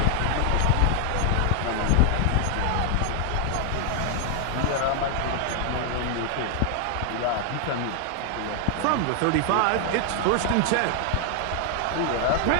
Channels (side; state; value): both; different; correlation 0.00